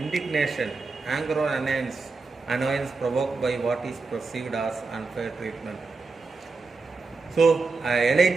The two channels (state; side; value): quieter; left; 4.1 dB